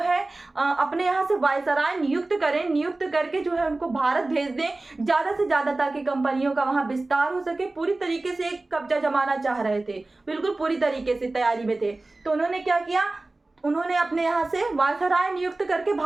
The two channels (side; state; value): left; quieter; 3.0 dB